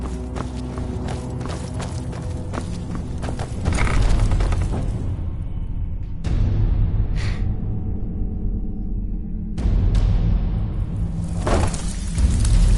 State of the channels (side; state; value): both; identical; correlation 1.00